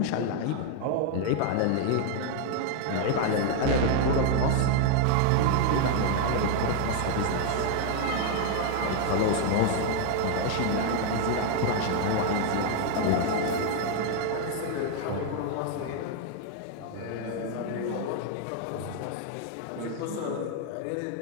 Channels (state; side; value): different; both; correlation 0.00